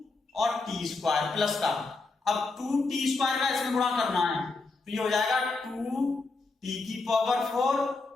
और t² प्लस का, अब 2t² का इसमें गुणा करना है तो ये हो जाएगा 2t⁴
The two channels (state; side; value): quieter; right; 3.7 dB